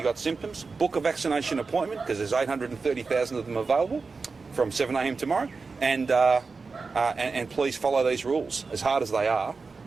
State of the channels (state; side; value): quieter; left; 4.4 dB